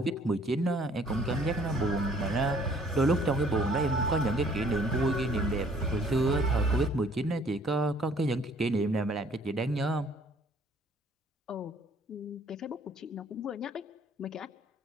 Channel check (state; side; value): normal; both; correlation 0.59